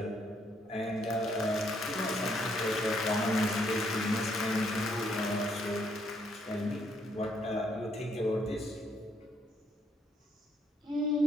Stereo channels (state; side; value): normal; both; correlation 0.71